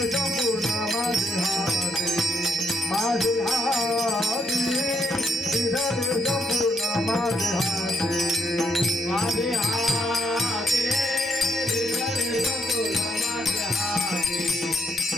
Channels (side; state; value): both; normal; correlation 0.74